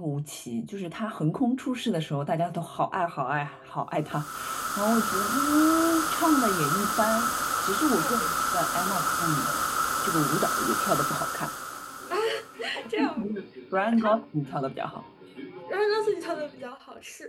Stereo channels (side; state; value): both; identical; correlation 1.00